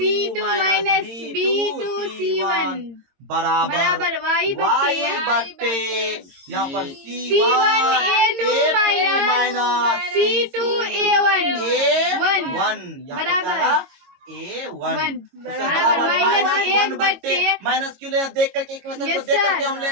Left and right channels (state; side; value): late; left; 22 ms